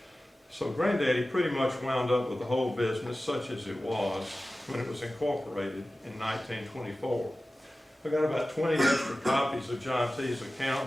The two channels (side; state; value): both; normal; correlation 0.96